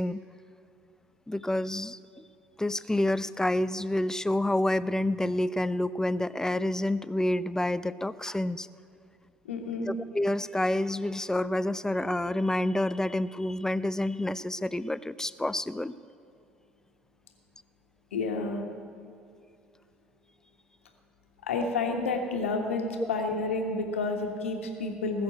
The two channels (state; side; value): normal; both; correlation 0.78